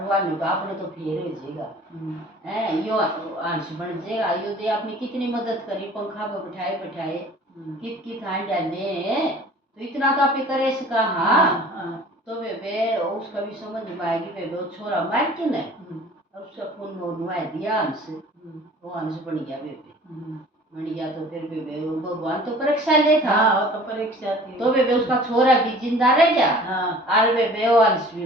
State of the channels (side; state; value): both; normal; correlation 0.47